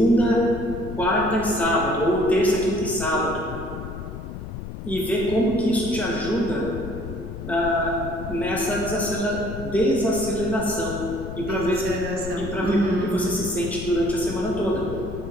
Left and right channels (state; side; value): noise; left; rumble, 9 dB below the sound